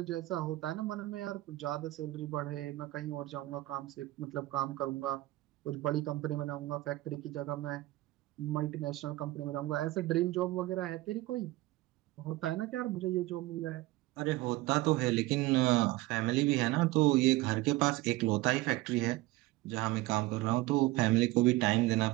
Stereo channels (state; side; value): quieter; left; 18.8 dB